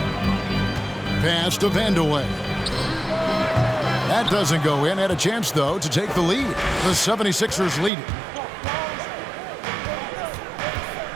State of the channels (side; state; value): left; drops out; at 7.9 s